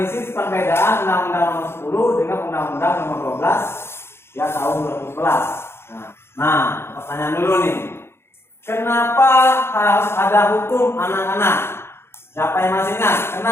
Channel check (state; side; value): late; right; 0.12 ms